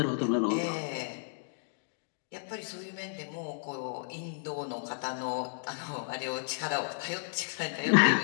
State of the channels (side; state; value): right; silent; digital silence